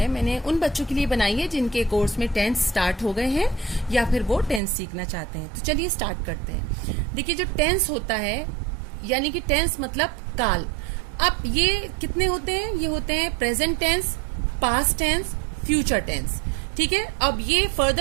मैंने उन बच्चों के लिए बनाई है जिनके कोर्स में टेंस स्टार्ट हो गए हैं या फिर वो टेंस सीखना चाहते हैं। तो चलिए स्टार्ट करते हैं। देखिए, जो टेंस होता है यानी कि टेंस मतलब काल। अब ये कितने होते हैं? ये होते हैं present tense, past tense, future tense. ठीक है। अब ये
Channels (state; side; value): drops out; left; at 4.6 s